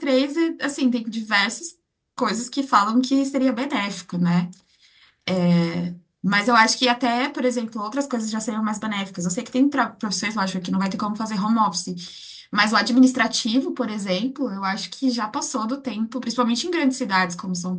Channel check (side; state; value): both; identical; correlation 1.00